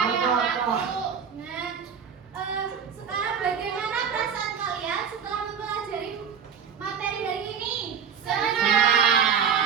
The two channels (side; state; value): left; quieter; 7.0 dB